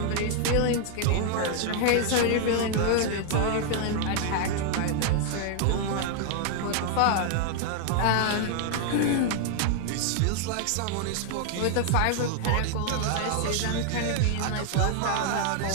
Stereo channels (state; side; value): different; both; correlation 0.00